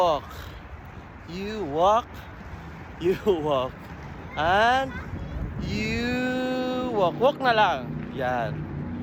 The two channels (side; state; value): both; identical; correlation 1.00